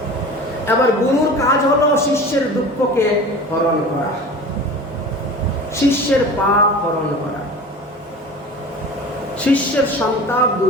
এবার গুরুর কাজ হলো শিষ্যের দুঃখকে হরণ করা, শিষ্যের পাপ হরণ করা, শিষ্যের সন্তাপ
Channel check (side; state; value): both; normal; correlation 0.37